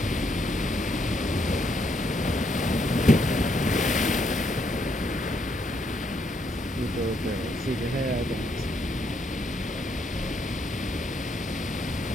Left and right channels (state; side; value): normal; both; correlation 0.74